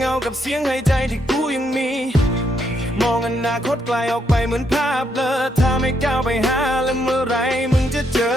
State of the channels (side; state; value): both; normal; correlation 0.76